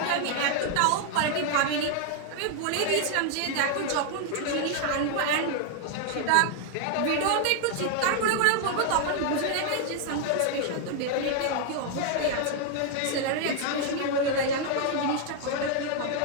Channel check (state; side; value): different; both; correlation 0.00